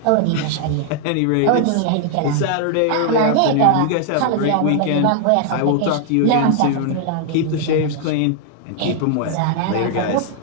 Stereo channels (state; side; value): different; both; correlation 0.00